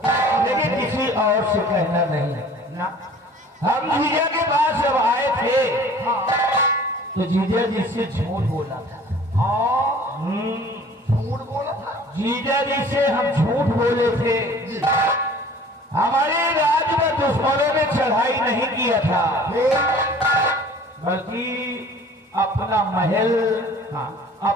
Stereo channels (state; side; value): normal; both; correlation 0.49